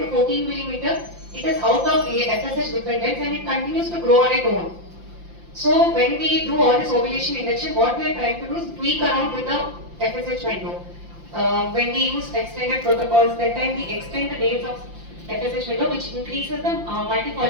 14 millimeter, it is out of FSH dependence and it continues to grow on its own. So when we do all this ovulation induction, what we are trying to do is tweak around with the FSH window. When we use extended protocols, that time we extend the days of FSH window, which increases the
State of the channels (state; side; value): late; left; 5.8 ms